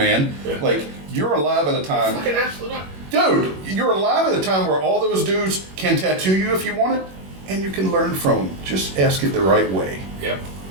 Yeah. Like, you're alive at a time. Fucking absolutely not. Dude, you're alive at a time where all those dudes can tattoo you if you want it, and you can learn from them. Just ask it the right way. Yep.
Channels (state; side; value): late; left; 21 ms